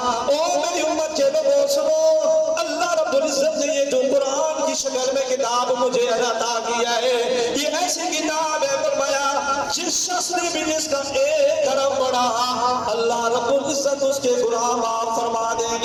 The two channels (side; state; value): both; identical; correlation 1.00